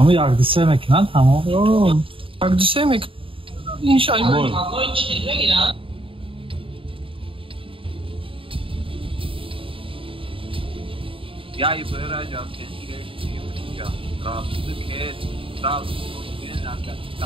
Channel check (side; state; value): left; late; 0.26 ms